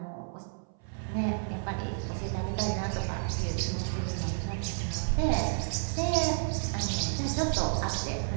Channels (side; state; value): left; silent; 57 dB below the other